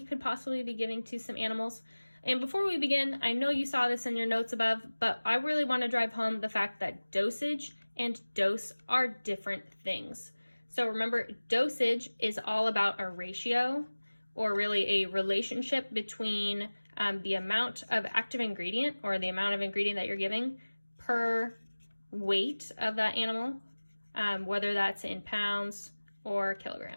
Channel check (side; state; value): both; inverted; correlation -1.00